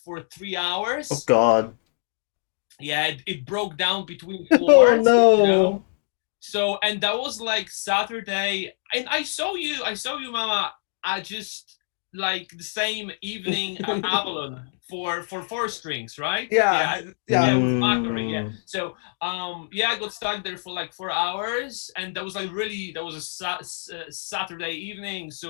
3 hours. Oh God. Yeah, it broke down between Oh floors. no. You know? So and that was like Saturday, and I saw you, Mama. I just like the same evening at Avalon for 4 strings, right? Yeah. With Macquarie, yeah. Mm. So I got stuck there for like 4 hours, and that was a Saturday evening,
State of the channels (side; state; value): right; silent; digital silence